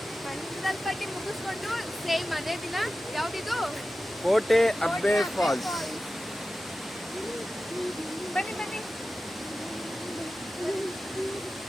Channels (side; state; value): both; normal; correlation 0.94